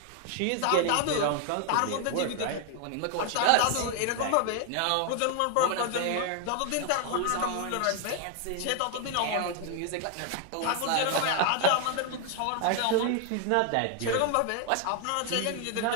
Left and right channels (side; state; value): both; different; correlation 0.00